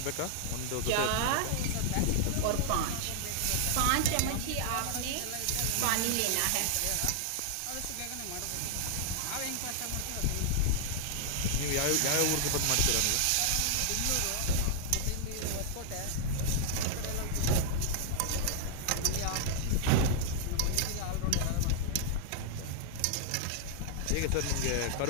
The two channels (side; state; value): both; different; correlation -0.01